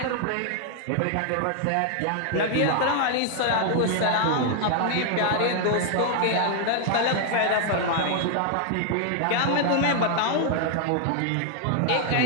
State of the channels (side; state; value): both; different; correlation 0.00